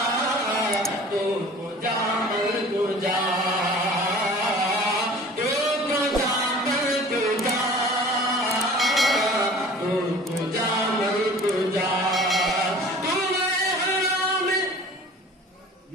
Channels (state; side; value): normal; both; correlation 0.45